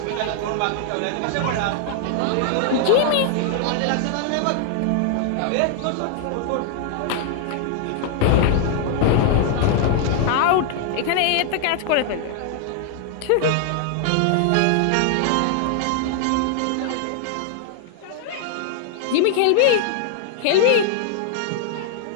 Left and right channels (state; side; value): different; both; correlation 0.00